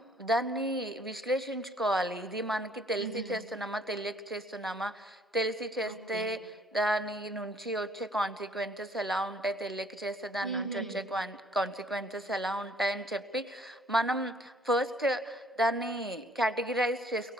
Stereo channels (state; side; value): normal; both; correlation 0.60